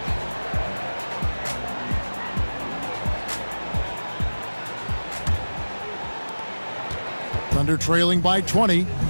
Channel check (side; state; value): both; inverted; correlation -1.00